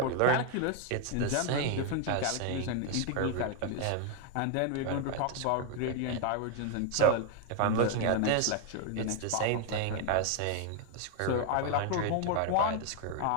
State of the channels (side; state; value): both; different; correlation 0.01